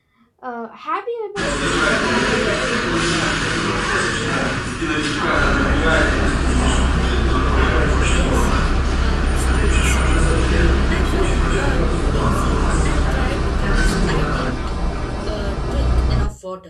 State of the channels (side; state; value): both; identical; correlation 1.00